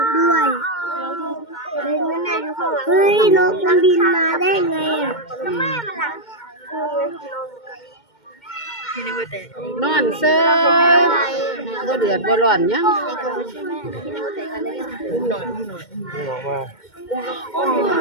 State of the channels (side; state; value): right; late; 2.2 ms